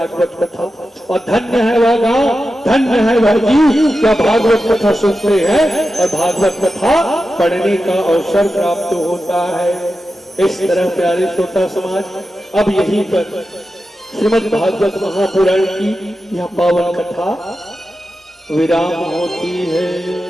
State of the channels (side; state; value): both; normal; correlation 0.91